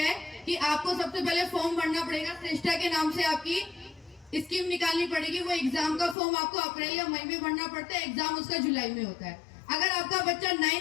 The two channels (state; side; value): drops out; right; at 6.2 s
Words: है कि आपको सबसे पहले फॉर्म भरना पड़ेगा। श्रेष्ठा के नाम से आपकी स्कीम निकालनी पड़ेगी। वो एग्जाम का फॉर्म आपको अप्रैल या मई में भरना पड़ता है, एग्जाम उसका जुलाई में होता है। अगर आपका बच्चा